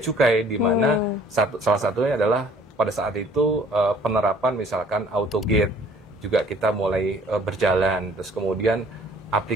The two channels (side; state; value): both; normal; correlation 0.55